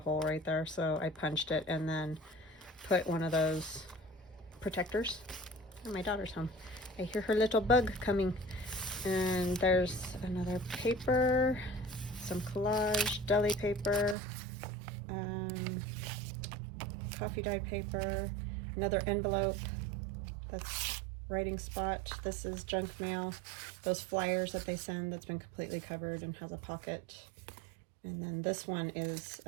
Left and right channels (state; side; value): drops out; left; at 14.2 s